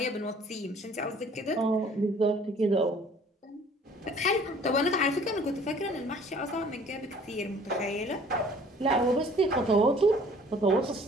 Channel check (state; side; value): normal; both; correlation 0.54